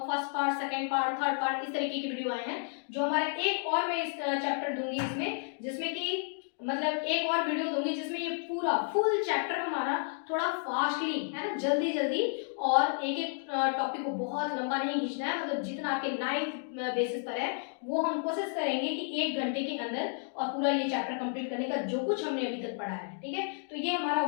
first part, second part, third part, इस तरीके की वीडियो आए हैं। जो हमारे एक और मैं इस चैप्टर दूंगी इसमें, जिसमें कि मतलब एक और वीडियो दूंगी जिसमें ये पूरा फुल चैप्टर हमारा थोड़ा फास्टली, है ना, जल्दी जल्दी, और एक एक टॉपिक को बहुत लंबा नहीं खींचना है, मतलब जितना आपके 9th बेसिस पर है वो हम कोशिश करेंगे कि 1 घंटे के अंदर और पूरा ये चैप्टर कंप्लीट करने का, जो कुछ हमने अभी तक पढ़ा है, ठीक है। तो ये हमारा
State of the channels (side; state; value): right; silent; 57 dB below the other